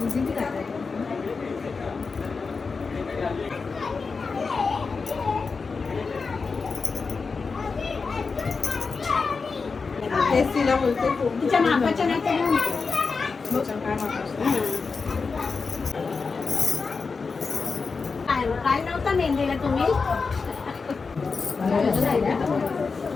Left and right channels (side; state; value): right; quieter; 4.7 dB